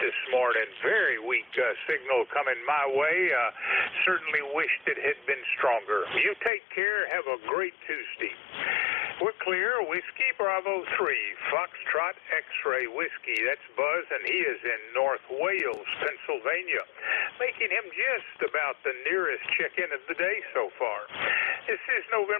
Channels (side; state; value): right; drops out; at 6.5 s